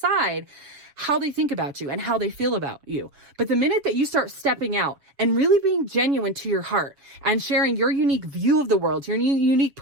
how they think about you and how they feel about you. But the minute that you start stepping out and really being genuine to your heart and sharing your unique view of the world, your unique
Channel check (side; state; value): left; late; 7.1 ms